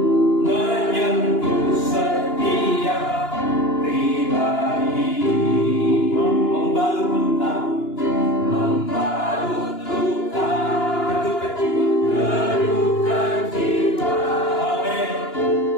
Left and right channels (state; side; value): late; right; 2.9 ms